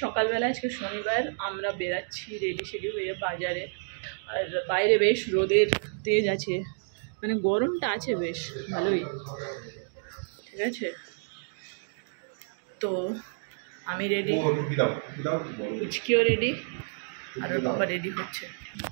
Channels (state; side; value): silent; left; digital silence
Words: সকালবেলা, আজকে শনিবার, আমরা বেরাচ্ছি রেডি সেডি হয়ে বাজারে। আর বাইরে বেশ রোদের তেজ আছে, মানে গরমটা আছে বেশ ভালোই, ঠিক আছে। তো আমি রেডি, পুচকিও রেডি, আর ওর বাবা রেডি হচ্ছে।